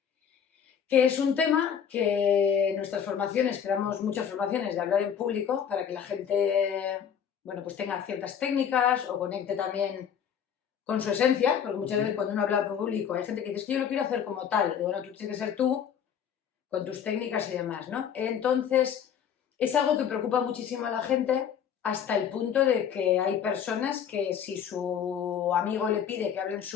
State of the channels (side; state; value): right; quieter; 8.2 dB